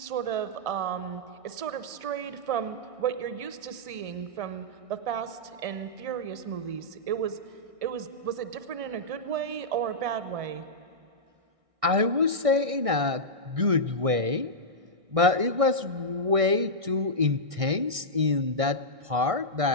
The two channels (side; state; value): left; late; 1.6 ms